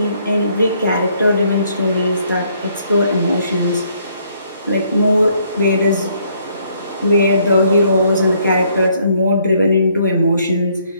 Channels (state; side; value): inverted; both; correlation -0.68